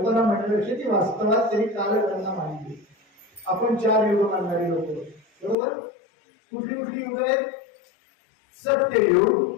म्हणण्यापेक्षा ती वास्तवात तरी कालगणना मांडली. आपण 4 युग मानणारी लोक, बरोबर? कुठली कुठली युग आहेत?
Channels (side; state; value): right; drops out; at 5.6 s